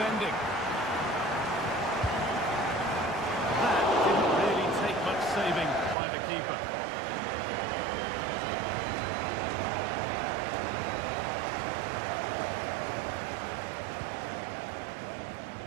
Saving by the keeper.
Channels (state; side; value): drops out; left; at 6.0 s